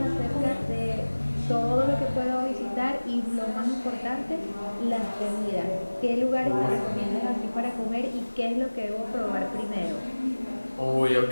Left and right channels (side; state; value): both; inverted; correlation -1.00